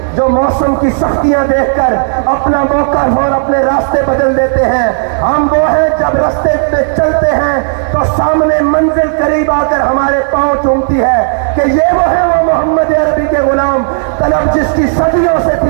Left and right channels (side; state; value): left; silent; digital silence